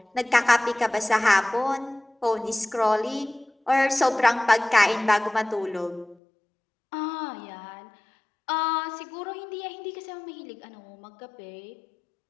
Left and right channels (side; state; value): right; drops out; at 6.2 s